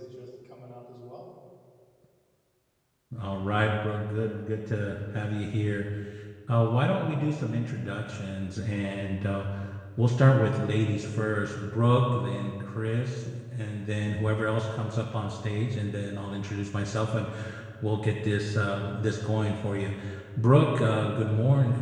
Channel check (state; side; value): identical; both; correlation 1.00